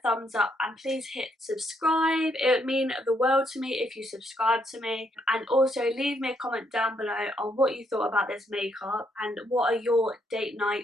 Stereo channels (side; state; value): both; normal; correlation 0.74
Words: up and please hit subscribe. It would mean the world to me if you subscribe to me. And also leave me a comment down below on what you thought about this makeup and what are your date